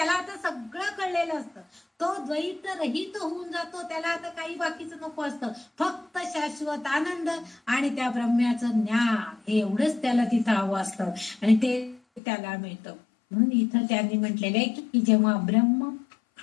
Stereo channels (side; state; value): right; drops out; at 12.2 s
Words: आता सगळं कळलेलं असतं, तो द्वैत रहित होऊन जातो. त्याला आता काही बाकीचं नको असतं, फक्त शाश्वत आनंद आणि त्या ब्रह्म्याचं ज्ञान, हे एवढंच त्याला तिथं हवं असतं आणि ते त्याला मिळतं. म्हणून इथं त्यांनी म्हटलेलं आहे की जेव्हा ब्रह्म